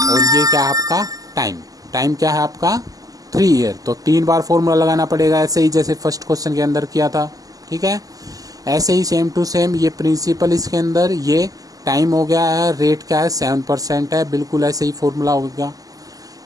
और ये क्या है आपका टाइम। टाइम क्या है आपका 3 ईयर, तो 3 बार फॉर्मूला लगाना पड़ेगा, ऐसे ही जैसे फर्स्ट क्वेश्चन के अंदर किया था। ठीक है, ऐसे ही सेम टू सेम, ये प्रिंसिपल इसके अंदर, ये टाइम हो गया है, रेट क्या है 7% है, बिल्कुल ऐसे ही फॉर्मूला होगा।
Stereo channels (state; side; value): late; left; 0.17 ms